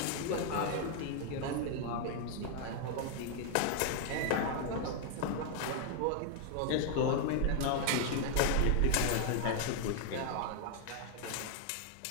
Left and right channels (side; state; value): both; different; correlation 0.00